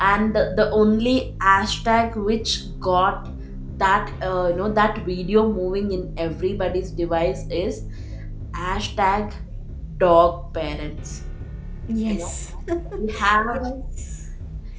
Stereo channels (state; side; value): identical; both; correlation 1.00